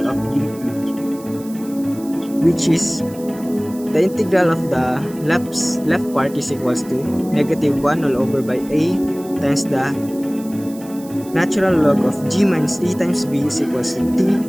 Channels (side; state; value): right; noise; hiss, 20 dB below the sound